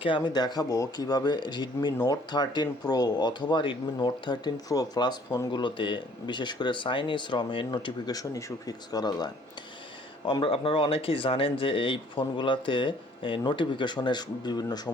আমি দেখাবো কিভাবে Redmi Note 13 Pro অথবা Redmi Note 13 Pro Plus ফোনগুলোতে বিশেষ করে চাইনিজ রমের নোটিফিকেশন ইস্যু ফিক্স করা যায়। আপনারা অনেকেই জানেন যে এই ফোনগুলোতে নোটিফিকেশনের বিভিন্ন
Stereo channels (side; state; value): both; normal; correlation 0.58